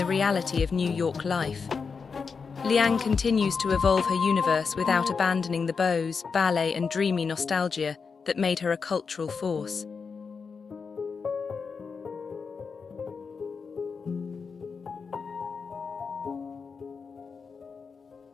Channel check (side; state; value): right; quieter; 5.3 dB